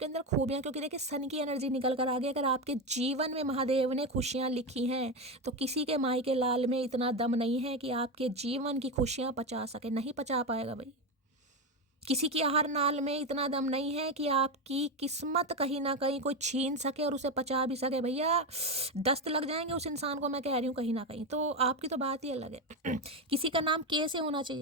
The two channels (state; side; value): normal; both; correlation 0.13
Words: अंदर खूबियां, क्योंकि देखिए सन की एनर्जी निकल कर आ गई। अगर आपके जीवन में महादेव ने खुशियां लिखी हैं, तो किसी के माई के लाल में इतना दम नहीं है कि आपके जीवन की खुशियां पचा सके। नहीं पचा पाएगा भाई, किसी की आहार नाल में इतना दम नहीं है कि आपकी किस्मत कहीं ना कहीं कोई छीन सके और उसे पचा भी सके। भैया दस्त लग जाएंगे उस इंसान को, मैं कह रही हूँ कहीं ना कहीं। तो आपकी तो बात ही अलग है। किसी का नाम कैसे होना